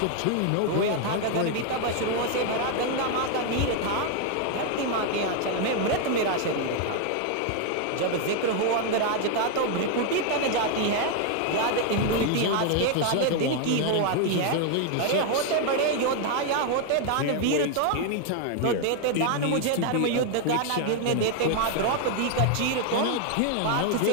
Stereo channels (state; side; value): different; both; correlation 0.00